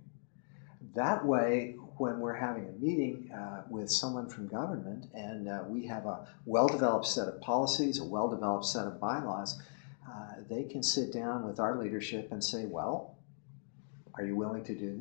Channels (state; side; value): silent; right; digital silence